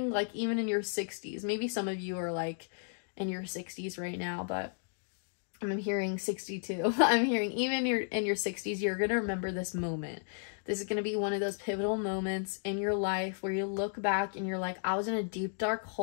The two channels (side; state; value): right; silent; digital silence